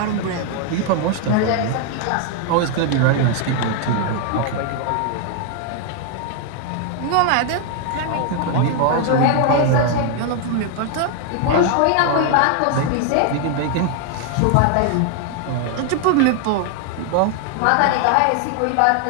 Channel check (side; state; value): both; different; correlation 0.00